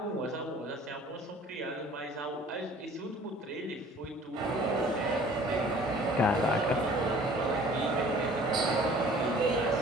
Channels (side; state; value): both; normal; correlation 0.51